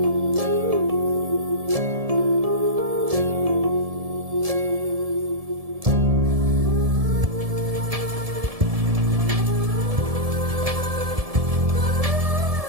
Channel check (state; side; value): late; left; 1.7 ms